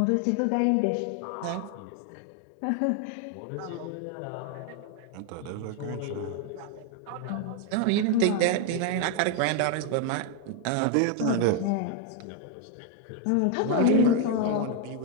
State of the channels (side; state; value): both; different; correlation 0.01